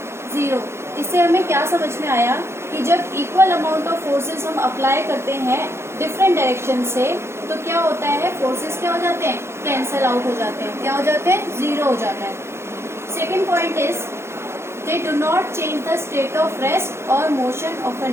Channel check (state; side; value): late; left; 0.13 ms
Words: 0. इससे हमें क्या समझ में आया कि जब इक्वल अमाउंट ऑफ फोर्सेस हम अप्लाई करते हैं डिफरेंट डायरेक्शन से तो क्या होता है? फोर्सेस क्या हो जाते हैं? कैंसिल आउट हो जाते हैं. क्या हो जाते हैं? 0 हो जाता है. Second point is they do not change the state of rest और मोशन ऑफ एन